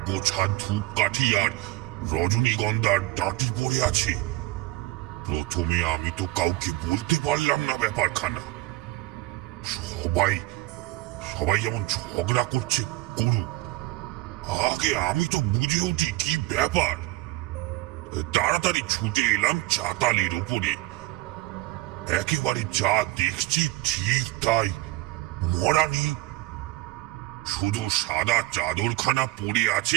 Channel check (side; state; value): left; quieter; 18.1 dB